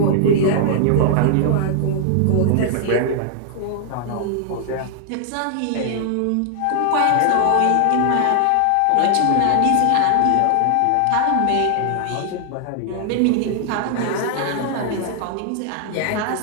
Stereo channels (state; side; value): different; both; correlation 0.00